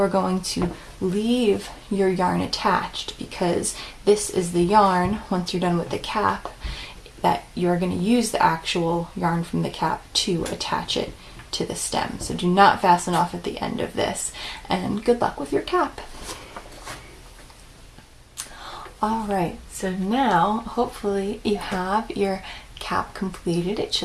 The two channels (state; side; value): identical; both; correlation 1.00